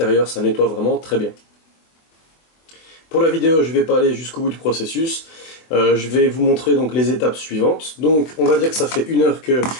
ça nettoie vraiment très bien. Pour la vidéo, je ne vais pas aller jusqu'au bout du processus. Je vais vous montrer donc les étapes suivantes. Donc on va dire que ça fait 1 heure que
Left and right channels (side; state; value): right; late; 24 ms